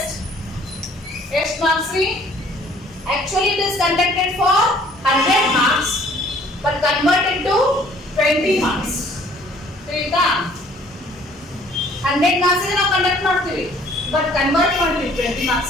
ಎಷ್ಟು ಮಾರ್ಕ್ಸ್ ರೀ? Actually it is conducted for 100 marks but converted to 20 marks. ತಿಳಿತಾ? 100 marks ಗೆ ನಾವು ಕಂಡಕ್ಟ್ ಮಾಡ್ತೀವಿ but convert ಮಾಡ್ತೀವಿ 20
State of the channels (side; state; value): both; normal; correlation 0.57